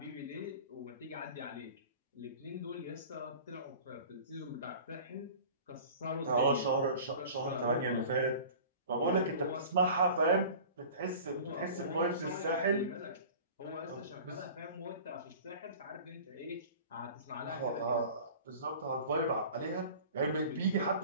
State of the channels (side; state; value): both; inverted; correlation -0.42